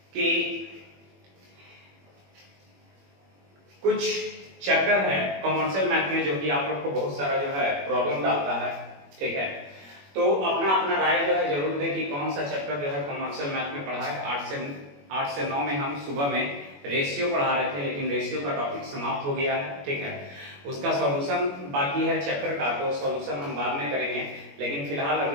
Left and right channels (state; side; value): late; left; 21 ms